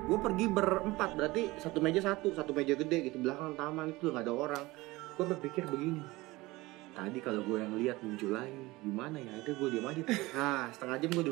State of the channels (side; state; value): left; quieter; 20.7 dB